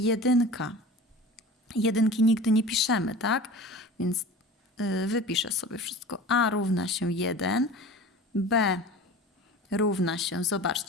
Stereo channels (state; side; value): normal; both; correlation 0.37